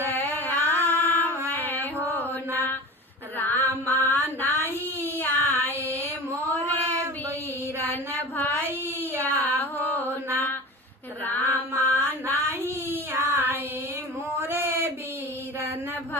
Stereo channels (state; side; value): normal; both; correlation 0.34